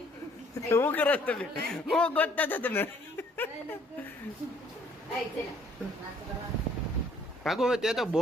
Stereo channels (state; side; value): normal; both; correlation 0.61